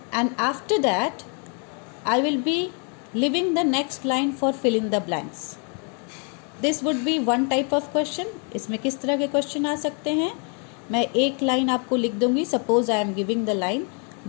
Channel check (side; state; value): right; quieter; 38.5 dB